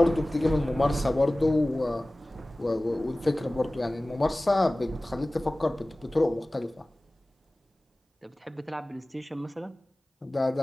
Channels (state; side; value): normal; both; correlation 0.98